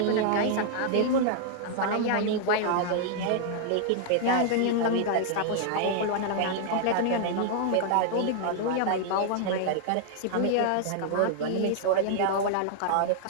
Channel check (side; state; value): both; different; correlation -0.01